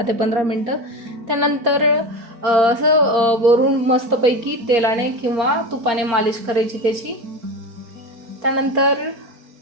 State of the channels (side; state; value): left; late; 4.3 ms